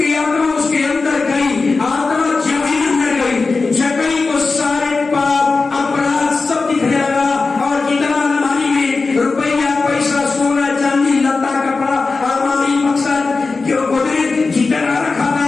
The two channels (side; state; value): right; quieter; 4.0 dB